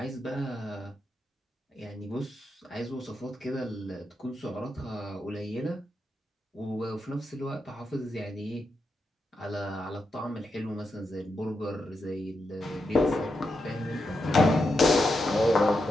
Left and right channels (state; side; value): normal; both; correlation 0.85